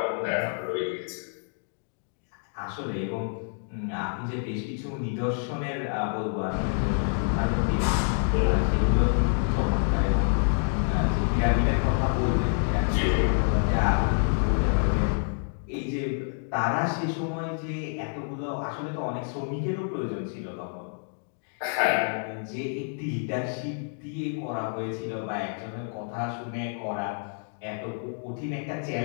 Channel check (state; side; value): silent; right; 59 dB below the other